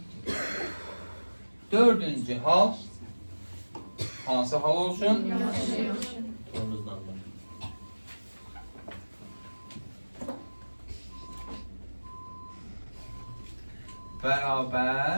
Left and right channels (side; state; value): both; inverted; correlation -1.00